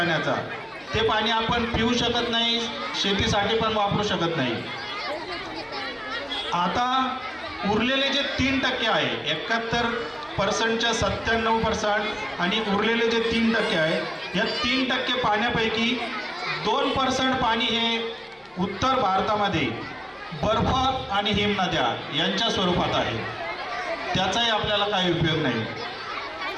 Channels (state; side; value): identical; both; correlation 1.00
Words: ते पाणी आपण पिऊ शकत नाही, शेतीसाठी पण वापरू शकत नाही. आता उरलेले जे 3% आहे, 71%च्या 97% आणि उरलेले जे 3% आहे, या 3% पाण्यापैकी 2% पाणी हे उत्तर भारतामध्ये बर्फ आणि हिमनद्या यांच्या स्वरूपात आहे, त्याचाही आपल्याला काही उपयोग नाही.